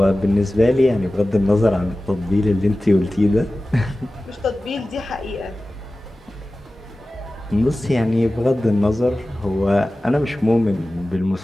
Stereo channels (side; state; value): both; normal; correlation 0.96